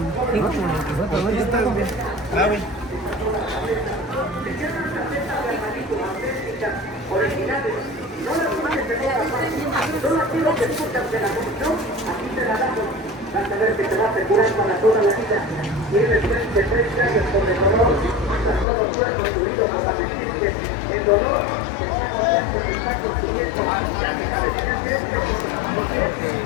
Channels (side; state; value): right; drops out; at 18.7 s